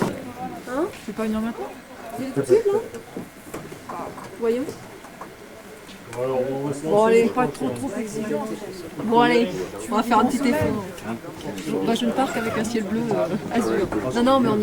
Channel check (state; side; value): identical; both; correlation 1.00